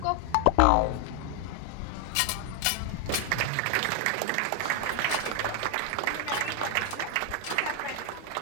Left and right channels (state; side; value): different; both; correlation 0.00